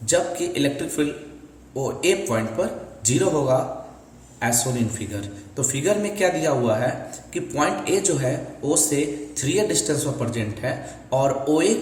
जबकि electric field O A point पर जीरो होगा एज सोन इन फिगर। तो फिगर में क्या दिया हुआ है कि पॉइंट ए जो है ओ से 3a डिस्टेंस पर प्रेजेंट है और ओ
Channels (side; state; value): both; identical; correlation 1.00